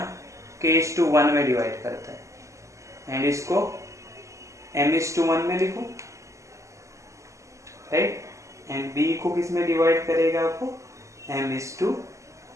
k:1 में डिवाइड करता है एंड इसको m:1 में लिखो, राइट, एंड बी को किस में डिवाइड करेगा आपको,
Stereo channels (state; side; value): late; left; 0.15 ms